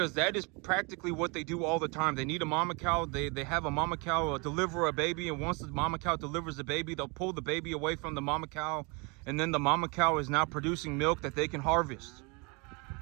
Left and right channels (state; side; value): quieter; left; 30.0 dB